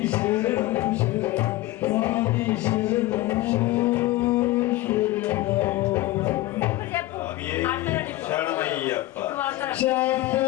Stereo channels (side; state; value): right; quieter; 17.2 dB